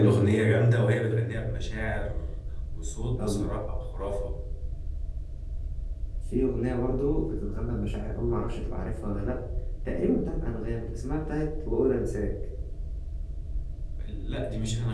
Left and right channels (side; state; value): both; identical; correlation 1.00